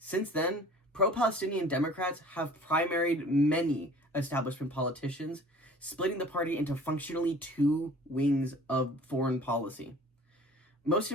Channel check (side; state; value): both; normal; correlation 0.47